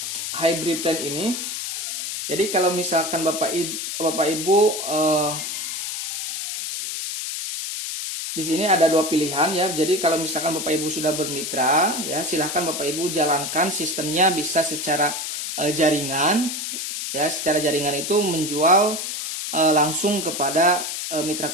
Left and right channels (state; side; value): noise; left; hiss, 4 dB below the sound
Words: hybrid plan ini. Jadi kalau misalkan Bapak Ibu di sini ada dua pilihan ya. Jadi kalau misalkan Bapak Ibu sudah bermitra ya, silahkan Bapak Ibu jalankan sistemnya bisa secara jaringan ya. Secara jaringan itu menjual langsung kepada mitra